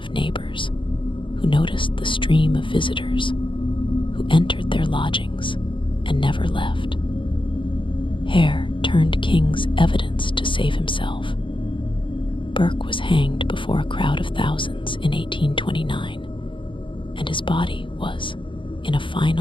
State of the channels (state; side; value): late; right; 0.24 ms